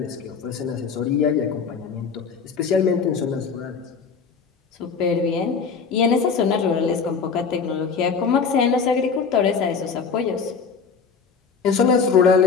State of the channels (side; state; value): right; quieter; 5.7 dB